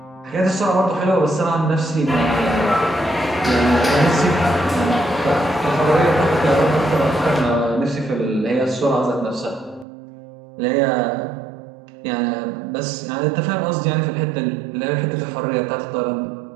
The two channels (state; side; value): drops out; left; at 9.9 s